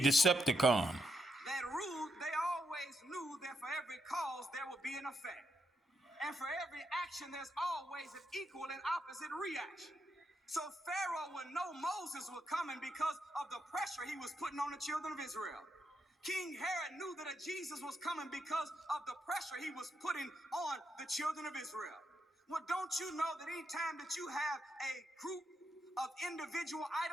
Decepticon. That rule, they always knew that for every cause there would be an effect. And for every action, there's always an equal and opposite reaction. So Pharaoh would know Moses was coming because of the pressure he was putting on the children of Israel. King Herod knew that a Jesus was coming because of the pressure he was putting on the children of Israel. Well, don't you know that anytime that you have a group of individual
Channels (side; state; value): both; normal; correlation 0.81